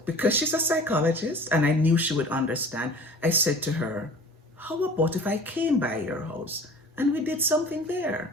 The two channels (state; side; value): normal; both; correlation 0.43